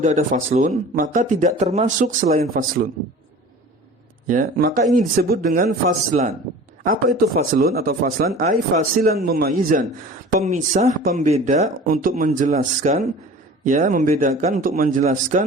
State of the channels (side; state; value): both; normal; correlation 0.41